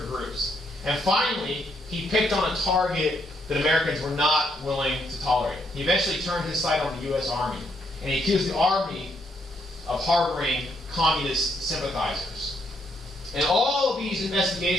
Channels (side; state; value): both; normal; correlation 0.74